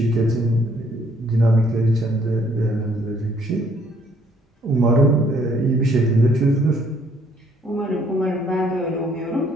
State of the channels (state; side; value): normal; both; correlation 0.64